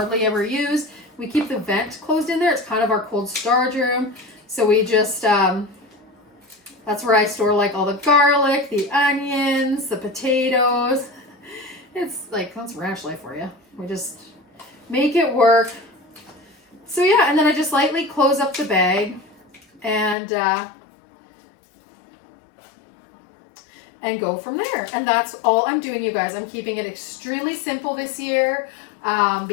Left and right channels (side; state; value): right; drops out; at 20.2 s